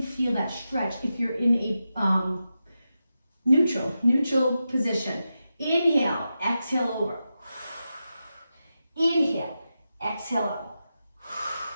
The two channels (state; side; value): inverted; both; correlation -0.90